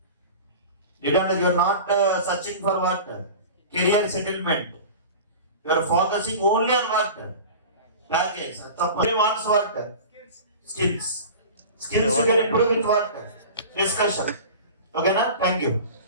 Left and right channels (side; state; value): both; inverted; correlation -0.36